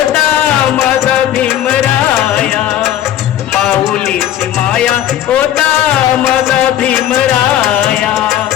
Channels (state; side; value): quieter; right; 11.7 dB